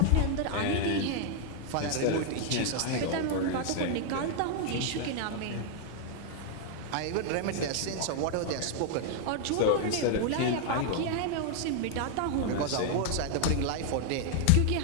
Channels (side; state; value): both; different; correlation 0.00